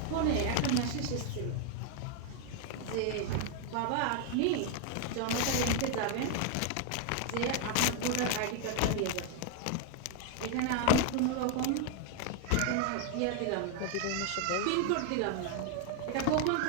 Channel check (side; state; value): both; different; correlation 0.01